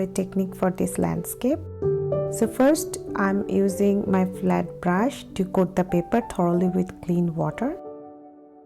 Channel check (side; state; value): both; identical; correlation 1.00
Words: technique for this landscape. So first I'm using my flat brush to coat the paper thoroughly with clean water.